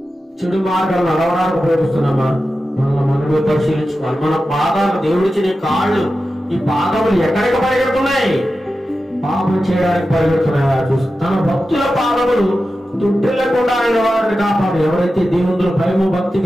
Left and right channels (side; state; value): both; normal; correlation 0.92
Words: చెడు మార్గాలు నడవడానికి ఉపయోగిస్తున్నామా? మనమే పరిశీలించుకోవాలి. మన పాదాలు, దేవుడిచ్చిన కాళ్ళు, ఈ పాదములు ఎక్కడికి పరిగెడుతున్నాయి? పాపం చేయడానికి పరిగెడుతున్నాయా చూసి తన భక్తుల పాదములు తుట్టిల్లకుండా ఆయన వారిని కాపాడు. ఎవరైతే దేవుని భయము భక్తి